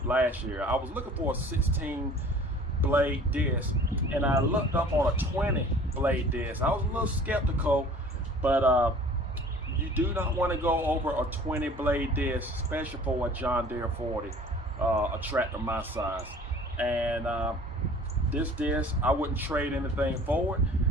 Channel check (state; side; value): normal; both; correlation 0.48